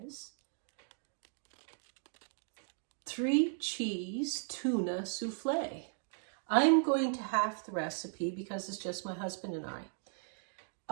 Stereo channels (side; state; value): left; silent; digital silence